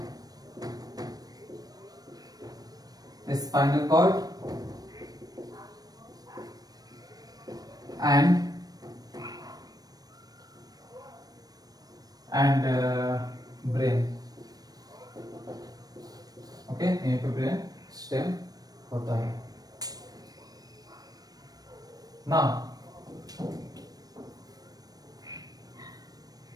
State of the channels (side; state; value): left; late; 0.19 ms